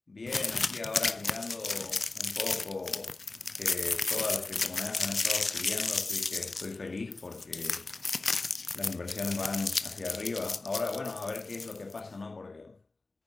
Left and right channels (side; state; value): right; quieter; 3.4 dB